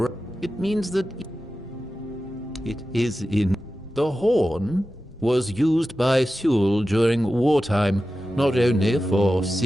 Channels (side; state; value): both; normal; correlation 0.93